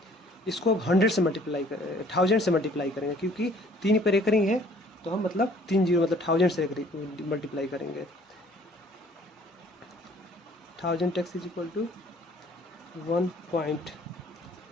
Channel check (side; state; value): both; normal; correlation 0.56